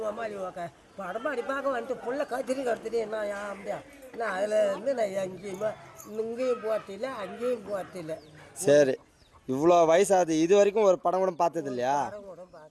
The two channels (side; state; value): both; identical; correlation 1.00